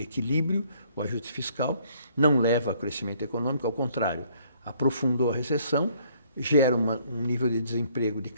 equilíbrio, o ajuste fiscal, não leva a crescimento econômico, ao contrário, aprofundou a recessão, gera um nível de desemprego de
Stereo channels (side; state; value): both; inverted; correlation -0.63